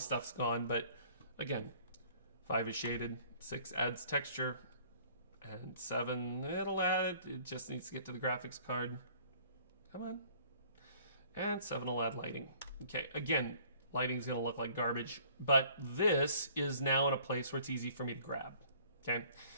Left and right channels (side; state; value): both; inverted; correlation -0.55